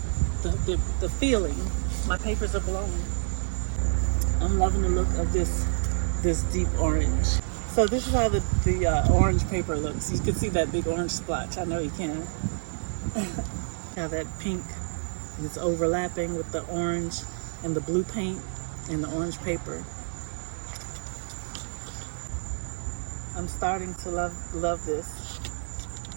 the feeling. My papers are blowing. I'm loving the look of this deep orange. So this is how the orange paper looks. You can see that big orange splotch. I know you can. How that pink is overlapping with the orange and the blue paint and the orange paper. I'm starting to love this.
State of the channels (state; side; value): silent; left; digital silence